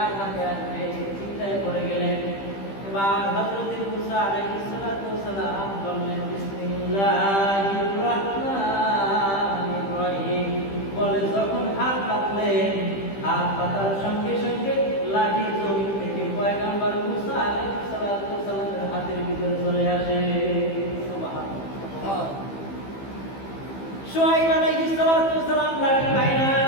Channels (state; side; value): late; right; 15 ms